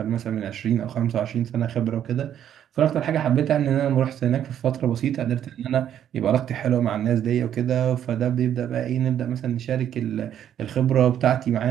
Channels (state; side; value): quieter; left; 10.1 dB